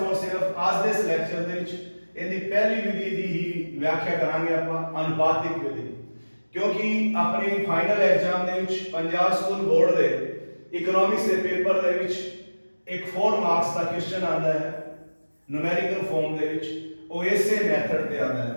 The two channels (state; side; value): inverted; both; correlation -1.00